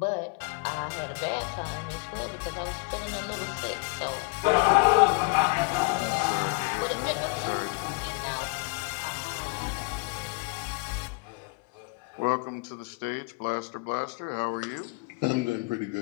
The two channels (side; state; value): right; quieter; 29.0 dB